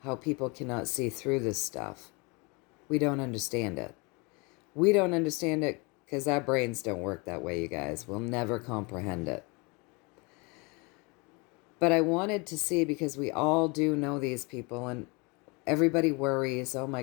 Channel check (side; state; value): right; quieter; 29.1 dB